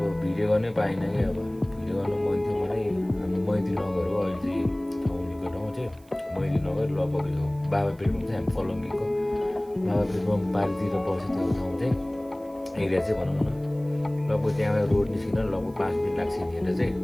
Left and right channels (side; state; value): right; noise; hiss, 29 dB below the sound